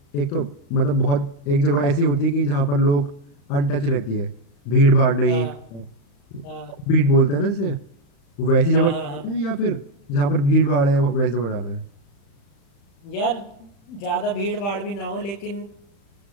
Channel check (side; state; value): right; late; 36 ms